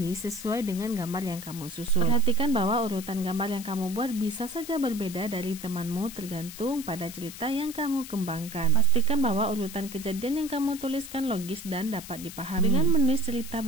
sesuai dengan gambar yang kamu susun. Perhatikan bahwa urutan gambar yang kamu buat bisa saja berbeda dari temanmu tergantung pada cerita yang kamu kembangkan. Pastikan bahwa urutan kejadian yang kamu tuliskan logis dan dapat dipahami. Dengan menulis cerita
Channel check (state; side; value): noise; left; hiss, 13 dB below the sound